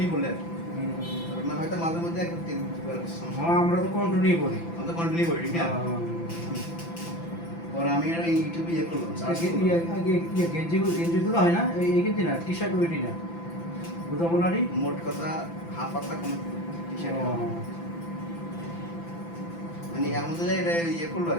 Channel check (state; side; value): late; right; 5.9 ms